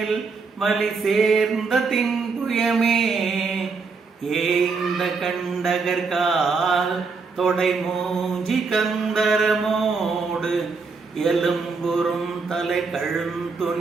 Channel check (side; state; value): left; quieter; 4.6 dB